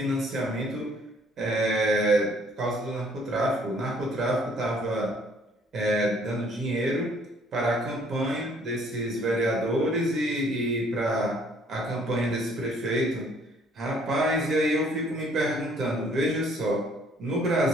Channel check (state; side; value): normal; both; correlation 0.61